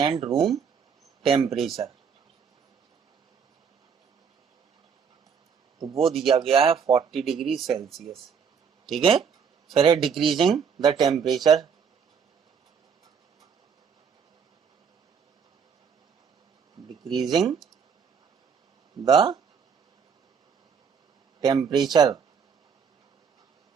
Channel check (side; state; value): left; quieter; 6.6 dB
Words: रूम टेम्परेचर, तो वो दिया गया है 40 डिग्री सेल्सियस, ठीक है। फिर है decreasing the temperature, decreasing the temperature,